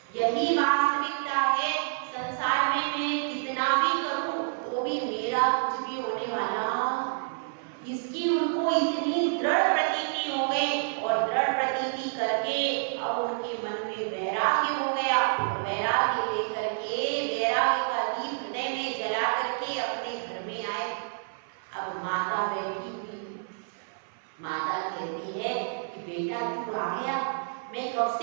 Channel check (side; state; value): left; silent; 57 dB below the other